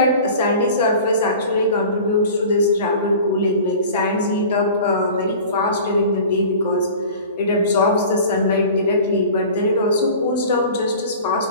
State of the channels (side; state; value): both; inverted; correlation -0.40